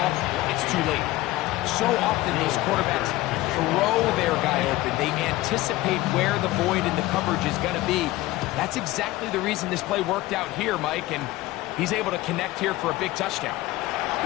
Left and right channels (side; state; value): right; quieter; 17.9 dB